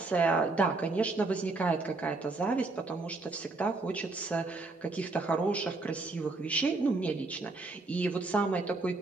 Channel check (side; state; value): left; quieter; 3.4 dB